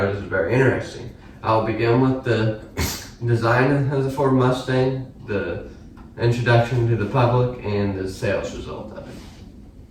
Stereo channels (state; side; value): identical; both; correlation 1.00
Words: is very interesting. I'll begin with the design of the Ford Mustang, the introduction to the public, and the sales result of